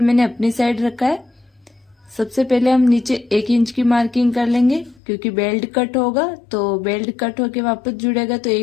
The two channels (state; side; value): drops out; right; at 5.0 s